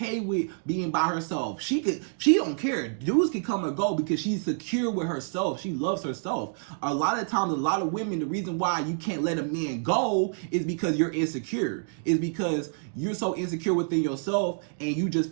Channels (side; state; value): left; silent; digital silence